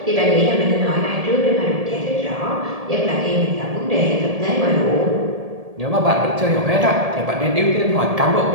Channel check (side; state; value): left; late; 1.7 ms